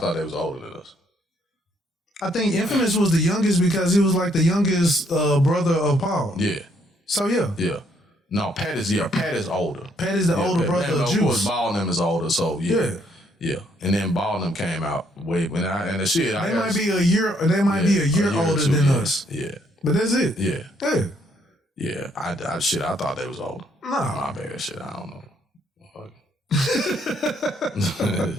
they was older than us. I think Infamous was the youngest because he was like the youngest brother of Paul. Yeah. So yeah. Yeah. No, Pat is older. Pat is the older brother of Juice. Of course, Ball and them is older, so yeah. Yeah. And then Ball and them came out way when and the shit. They might be a year older than us. Yeah. But that's it. Yeah. Yeah. Yeah. I thought they was older. No. My bad shit. I don't know.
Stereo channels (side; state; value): both; normal; correlation 0.70